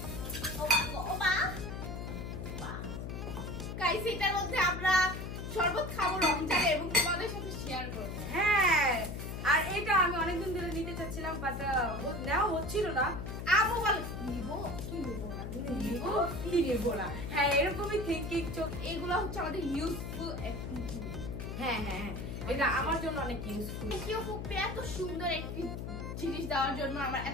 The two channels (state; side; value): noise; left; hum, 6 dB below the sound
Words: গাইস এটার মধ্যে আমরা শরবত খাবো রমজানে এবং তোমাদের সাথে শেয়ার করবো। হ্যাঁ, আর এটা আমি অনেকদিন ধরে নিতে চাচ্ছিলাম, বাট নেওয়া হচ্ছিল না। আবু বল নিবো কি নিবো না, নিবো কি নিবো না, হ্যাঁ এরকমই থিঙ্কিং চোখ। এগুলো হচ্ছে আমাদের ইউজফুল অ্যাক্টিভিটি। হ্যাঁ হ্যাঁ হ্যাঁ, এটা আমার জন্য অনেক ইউজফুল। কেউ ফুপে এত সুন্দর একটি জিনিস দেওয়ার জন্য আমার